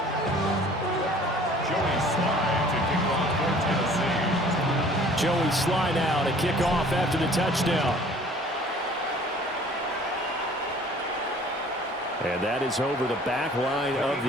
Joey Sly now to kick off after the touchdown. And that is over the back line of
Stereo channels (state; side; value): normal; both; correlation 0.51